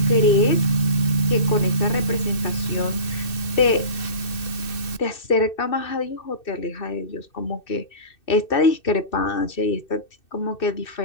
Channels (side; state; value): right; late; 2.6 ms